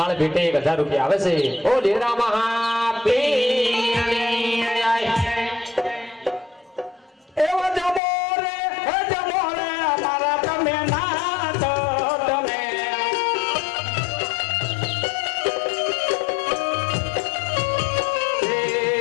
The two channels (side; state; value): right; drops out; at 8.0 s